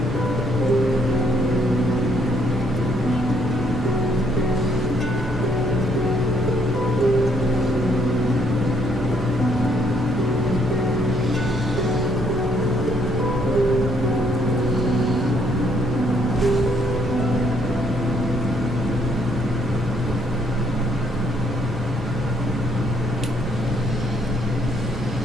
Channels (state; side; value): normal; both; correlation 0.68